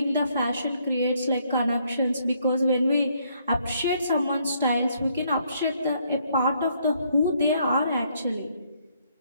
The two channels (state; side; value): inverted; both; correlation -0.70